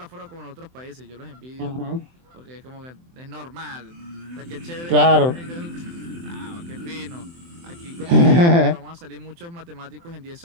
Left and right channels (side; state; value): left; late; 23 ms